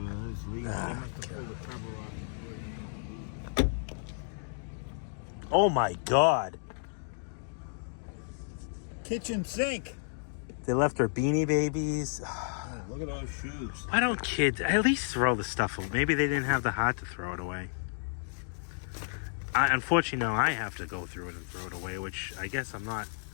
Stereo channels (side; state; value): right; silent; digital silence